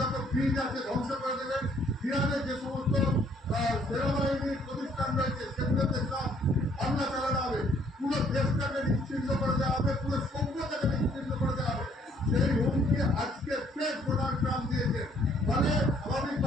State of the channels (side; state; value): both; normal; correlation 0.64